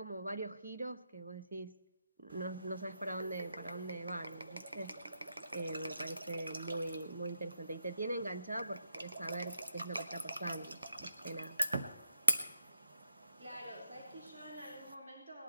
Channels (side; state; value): both; inverted; correlation -0.82